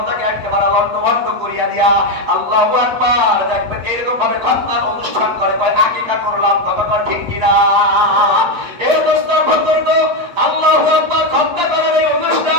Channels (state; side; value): late; left; 8.8 ms